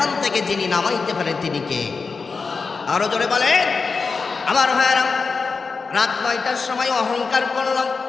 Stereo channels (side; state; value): right; quieter; 4.7 dB